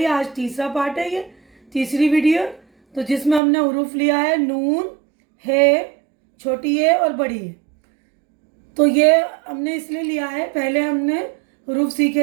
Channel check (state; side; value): drops out; left; at 3.4 s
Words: आज तीसरा पार्ट है, ये तीसरी वीडियो। तो जिसमें हमने हुरूफ लिया है नून, है, छोटी है और बड़ी है। तो ये हमने इसलिए लिया है, पहले हमने हुरूफ